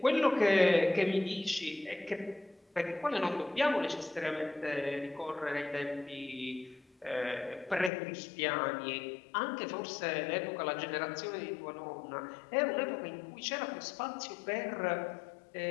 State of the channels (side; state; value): right; drops out; at 7.9 s